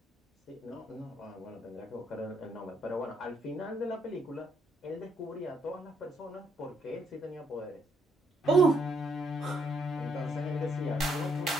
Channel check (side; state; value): both; normal; correlation 0.73